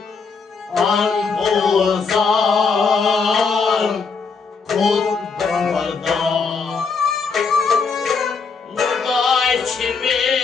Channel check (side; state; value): right; quieter; 5.1 dB